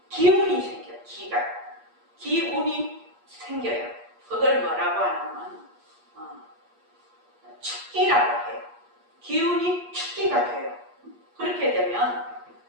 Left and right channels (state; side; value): late; left; 8.4 ms